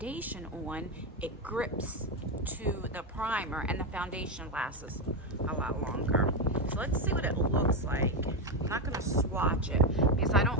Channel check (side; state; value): both; normal; correlation 0.09